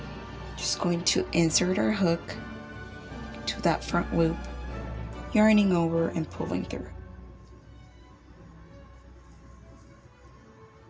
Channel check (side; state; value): both; identical; correlation 1.00